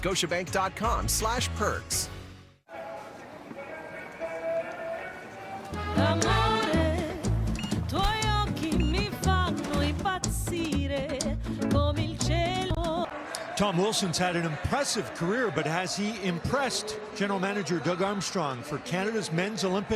Tom Wilson's had an impressive career, but has he impressed General Manager Doug Armstrong for Canada's men's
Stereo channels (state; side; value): identical; both; correlation 1.00